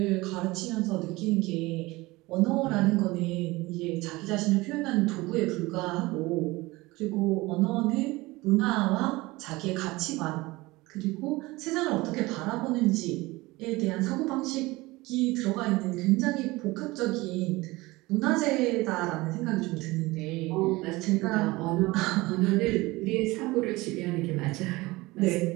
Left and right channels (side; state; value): left; quieter; 21.1 dB